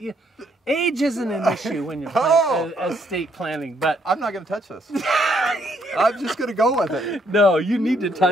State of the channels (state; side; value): normal; both; correlation 0.71